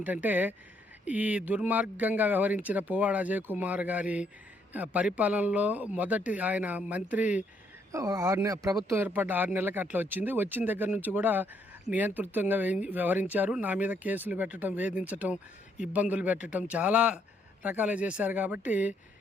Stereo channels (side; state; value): both; normal; correlation 0.71